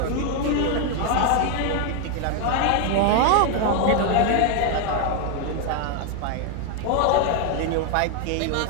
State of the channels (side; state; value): both; different; correlation 0.01